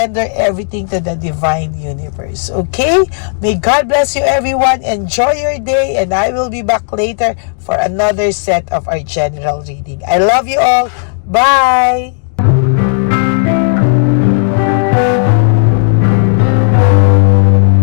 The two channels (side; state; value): right; silent; digital silence